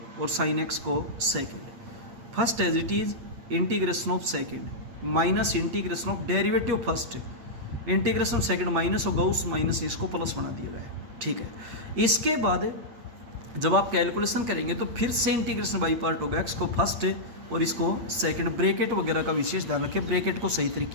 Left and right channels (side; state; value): left; late; 8.5 ms